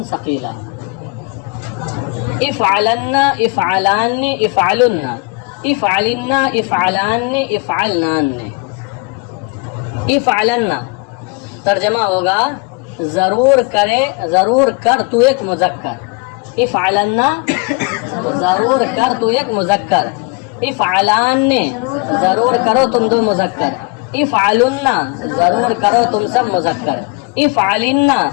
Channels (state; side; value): quieter; right; 30.1 dB